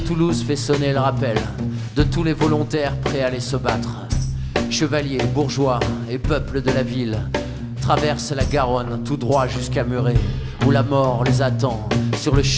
fait sonner le rappel de tous les volontaires prêts à aller se battre. Chevaliers, bourgeois et peuple de la ville traversent la Garonne tout droit jusqu'à Muret, où la mort les attend sur le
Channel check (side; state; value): both; identical; correlation 1.00